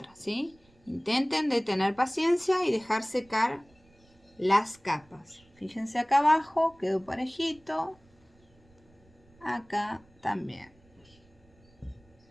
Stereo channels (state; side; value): noise; right; rumble, 30 dB below the sound